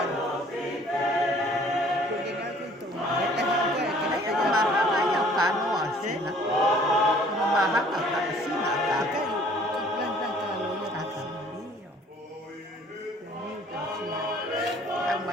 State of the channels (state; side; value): normal; both; correlation 0.55